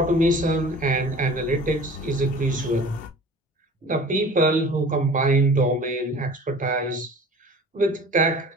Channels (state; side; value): normal; both; correlation 0.43